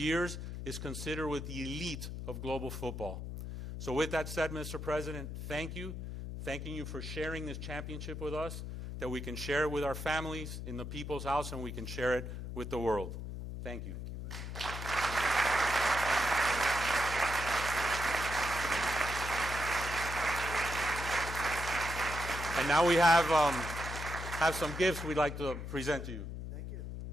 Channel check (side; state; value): left; noise; hum, 7 dB below the sound